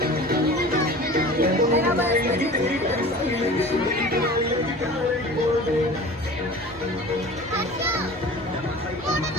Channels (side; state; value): both; normal; correlation 0.40